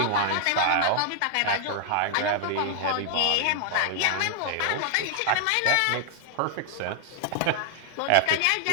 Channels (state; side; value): different; both; correlation -0.01